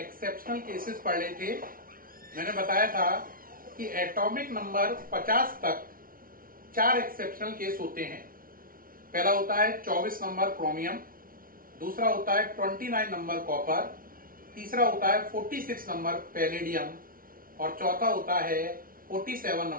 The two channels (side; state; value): left; late; 0.42 ms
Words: केसेस पढ़ रहे थे। मैंने बताया था कि एटॉमिक नंबर 50 तक 4 एक्सेप्शनल केस होते हैं। पहला होता है 24 नंबर क्रोमियम, दूसरा होता है 29 नंबर कॉपर, तीसरा होता है 46 नंबर पैलेडियम और चौथा होता है 47